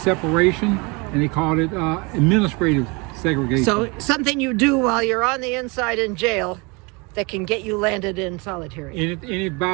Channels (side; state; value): left; quieter; 28.6 dB